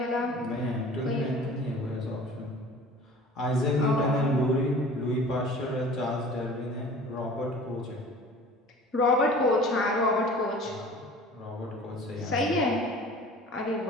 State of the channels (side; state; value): both; normal; correlation 0.44